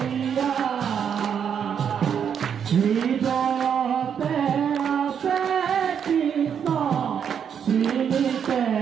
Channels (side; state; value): left; quieter; 7.9 dB